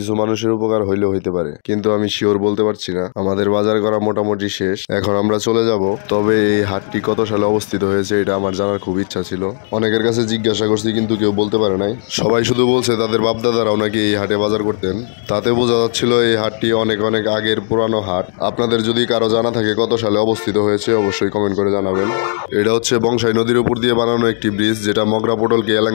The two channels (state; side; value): silent; right; digital silence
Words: মানুষের উপকার হইলেও হইতে পারে, কিন্তু আমি শিওর বলতে পারছি না। আমাদের বাজার করা মোটামুটি শেষ, এখন আমরা চলে যাব। তবে এই হাটটি কত সালে অবস্থিত হয়েছে এটা আমার জানার খুব ইচ্ছা ছিল। অনেকের কাছে জিজ্ঞাসা করছি কিন্তু কেউ বলতে পারে নাই। সবাই শুধু বলছে তাদের বাপদাদারাও নাকি এই হাটে বাজার করতেন। তাতে বোঝা যাচ্ছিল এই হাটটি অনেক অনেক আগের পুরানো হাট। আপনাদের যদি কারো জানা থাকে কত সালে অবস্থিত হয়েছে অবশ্যই কমেন্ট করে জানাবেন। এটা হচ্ছে বংশাই নদীর উপর দিয়ে বানানো একটি ব্রিজ, যেটা মগরা পোটলকে